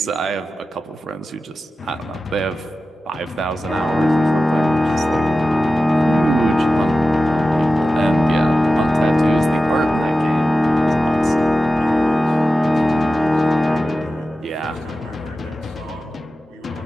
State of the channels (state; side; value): normal; both; correlation 0.94